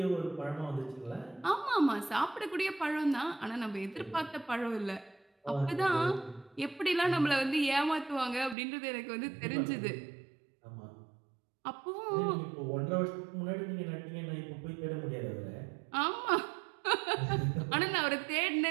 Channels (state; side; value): drops out; left; at 8.6 s